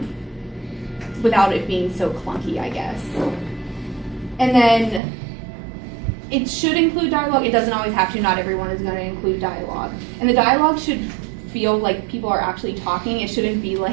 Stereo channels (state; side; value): drops out; left; at 5.0 s